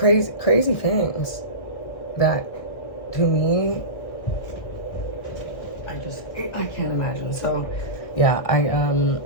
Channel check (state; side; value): late; right; 1.6 ms